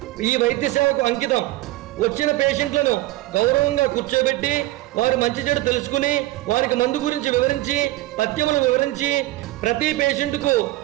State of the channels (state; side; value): quieter; left; 17.6 dB